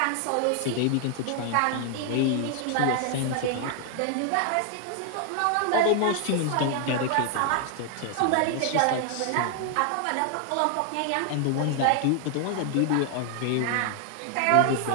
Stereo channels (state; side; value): different; both; correlation 0.00